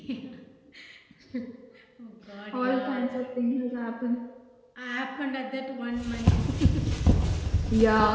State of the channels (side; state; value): both; identical; correlation 1.00